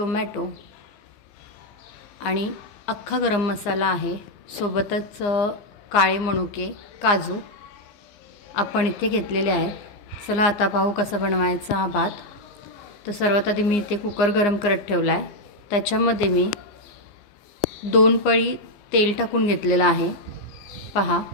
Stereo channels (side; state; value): right; late; 15 ms